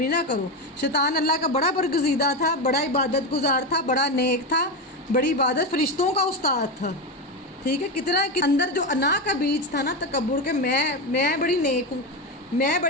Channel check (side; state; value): both; normal; correlation 0.14